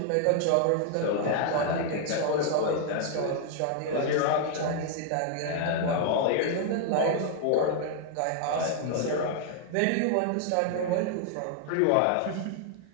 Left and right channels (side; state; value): both; different; correlation 0.00